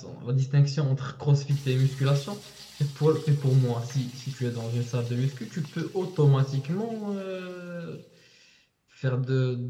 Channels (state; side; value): identical; both; correlation 1.00